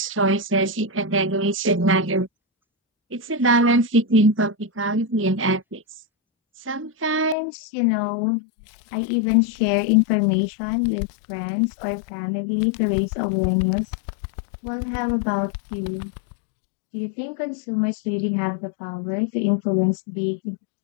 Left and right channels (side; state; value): right; drops out; at 7.4 s